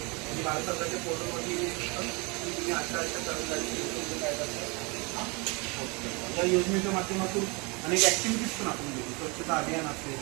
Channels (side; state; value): left; quieter; 29.0 dB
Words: आणि भारत सरकारच्या पोर्टलवरती तुम्ही अशा कर्मचारी काय करतात. या योजनेच्या माध्यमातून अनेक ॲक्टिव्हिटीज पण आपण घेतो. स्वच्छता अभियान असेल,